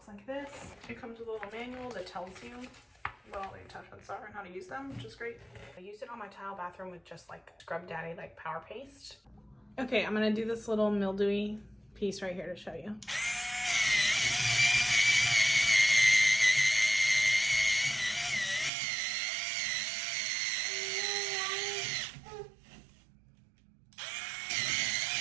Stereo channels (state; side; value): drops out; left; at 18.7 s